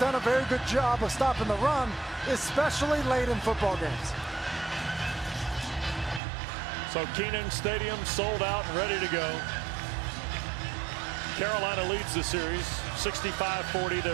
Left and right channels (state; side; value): drops out; left; at 6.2 s